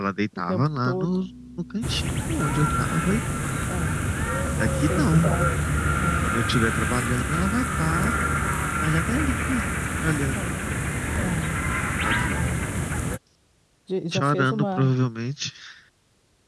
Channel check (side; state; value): both; identical; correlation 1.00